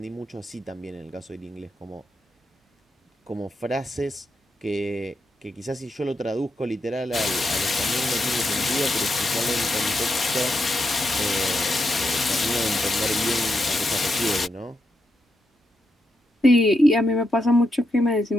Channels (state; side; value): normal; both; correlation 0.83